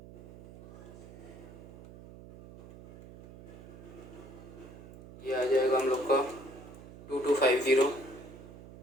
ये आ जाएगा हम लोग का 2250।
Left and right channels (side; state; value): right; noise; hum, 17 dB below the sound